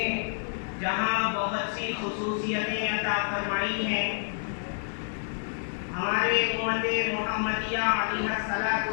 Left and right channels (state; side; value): silent; right; digital silence